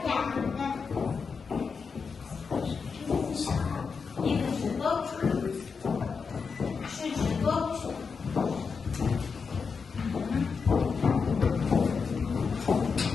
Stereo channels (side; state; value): right; quieter; 5.4 dB